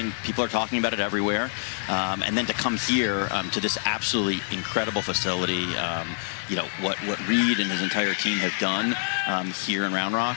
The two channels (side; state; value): right; silent; digital silence